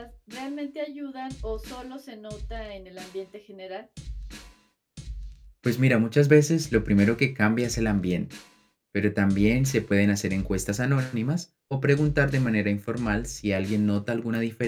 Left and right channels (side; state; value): both; identical; correlation 1.00